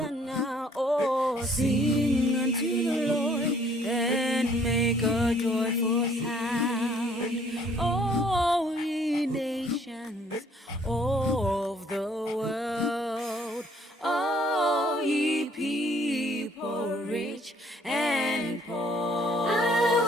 Oh, sing unto the Lord and make a joyful sound. Oh, ye nations of the world, all ye people rich and poor.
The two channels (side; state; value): both; normal; correlation 0.61